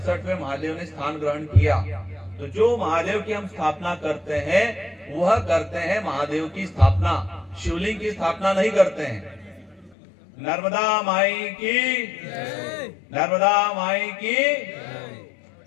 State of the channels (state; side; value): drops out; right; at 10.0 s